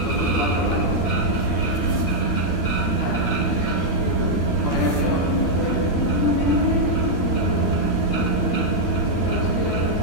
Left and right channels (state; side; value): late; right; 13 ms